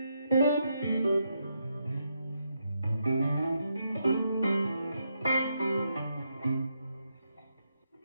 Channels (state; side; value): inverted; both; correlation -0.80